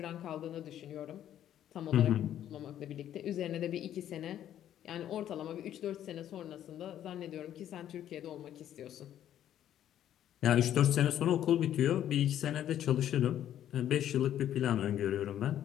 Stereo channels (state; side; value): quieter; right; 11.1 dB